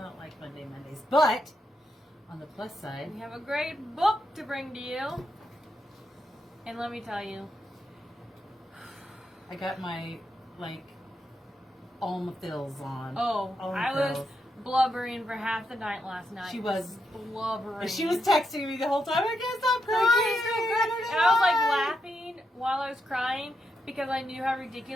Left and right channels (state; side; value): normal; both; correlation 0.83